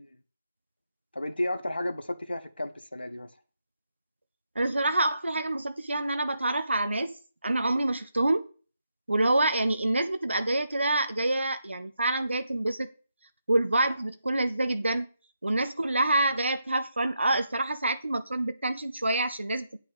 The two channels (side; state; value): both; inverted; correlation -0.82